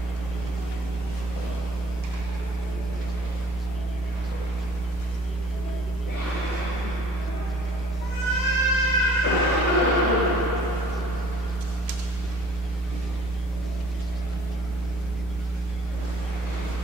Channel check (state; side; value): normal; both; correlation 0.54